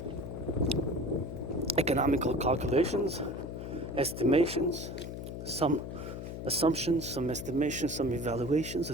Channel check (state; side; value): noise; left; hum, 7 dB below the sound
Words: economical calculations, estimations, some assumptions, some estimations, some evaluations